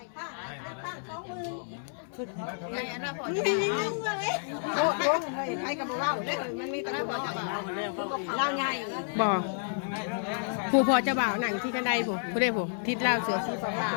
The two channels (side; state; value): right; silent; digital silence